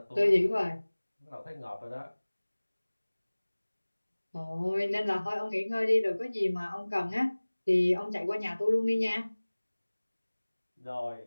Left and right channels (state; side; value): inverted; both; correlation -1.00